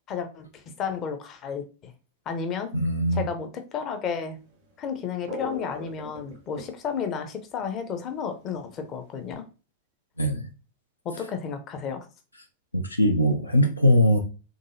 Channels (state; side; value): inverted; both; correlation -0.51